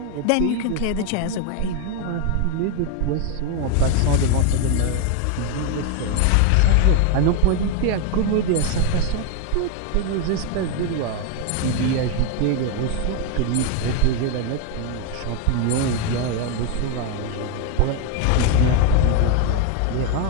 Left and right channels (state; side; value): different; both; correlation 0.01